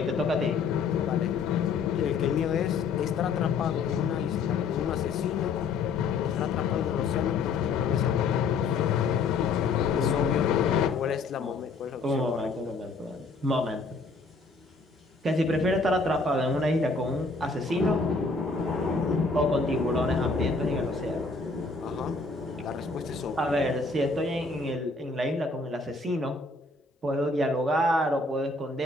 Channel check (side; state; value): right; quieter; 4.0 dB